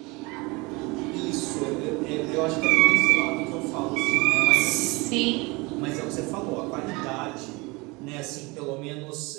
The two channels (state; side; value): quieter; left; 25.5 dB